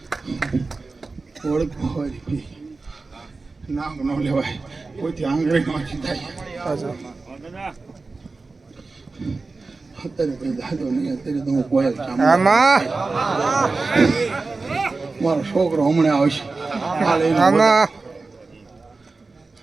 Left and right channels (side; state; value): left; quieter; 3.8 dB